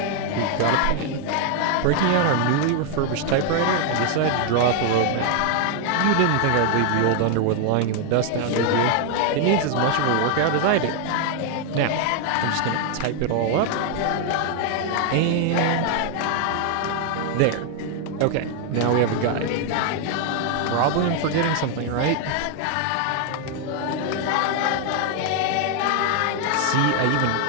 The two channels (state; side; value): different; both; correlation 0.00